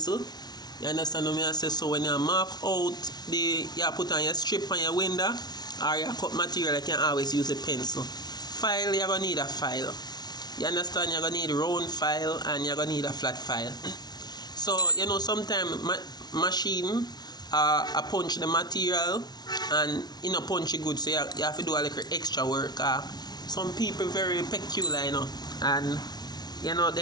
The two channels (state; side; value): late; right; 0.19 ms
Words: You understand what I say? So when you mark out, you put on your strip on your window, or you cut material, you can always use a pencil. File, you're going to need a file. You understand? You're going to need a round file and you're going to need a flat file. So, you know, sometimes machine punch the material and you know punch it good, so you have to do a little extra work. Some people very peculiar, you know, and you know